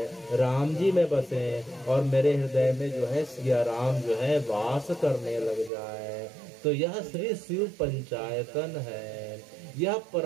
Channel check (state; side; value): drops out; left; at 5.7 s